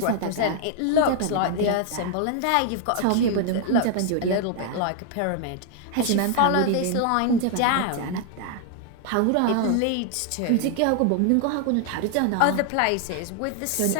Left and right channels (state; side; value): different; both; correlation 0.00